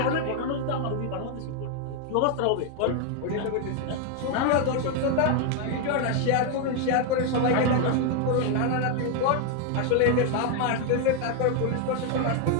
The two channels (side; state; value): both; different; correlation 0.01